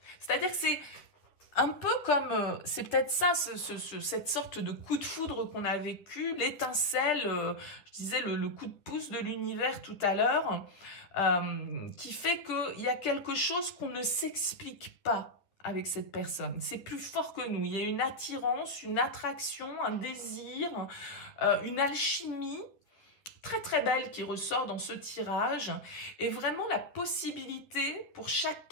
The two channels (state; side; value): late; right; 10 ms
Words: C'est-à-dire que c'est un peu comme, c'est peut-être ça, cette sorte de coup de foudre qu'on a vécu, l'étincelle, je disais le coup de pouce de l'univers tout à l'heure, qui fait qu'il y a quelque chose qu'on ne s'explique pas avec cette personne. C'est plus fort que nous. Il y a une attirance, une attraction, un désir, une alchimie très très belle qui ressort dans ce tirage est vraiment la possibilité pour